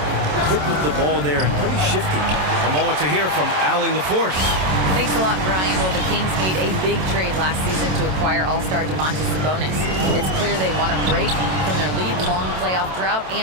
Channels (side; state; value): left; late; 27 ms